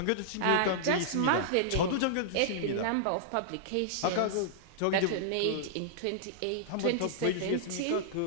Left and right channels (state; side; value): different; both; correlation -0.02